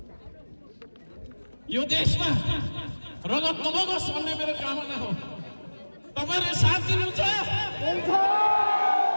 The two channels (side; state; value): both; inverted; correlation -1.00